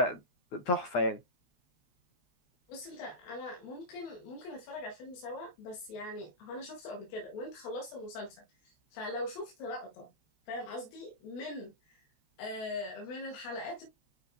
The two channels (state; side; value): late; right; 11 ms